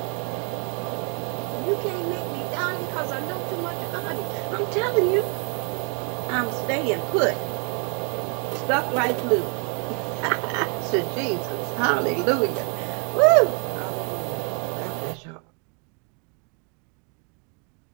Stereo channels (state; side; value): quieter; left; 37.2 dB